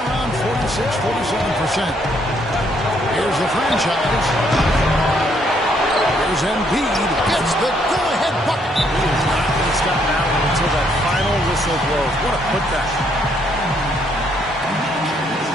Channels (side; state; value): both; normal; correlation 0.70